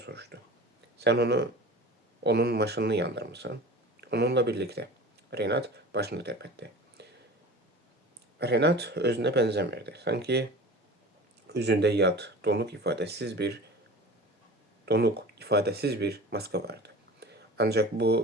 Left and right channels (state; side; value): normal; both; correlation 0.38